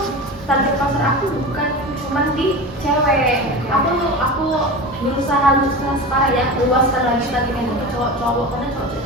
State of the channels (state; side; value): normal; both; correlation 0.29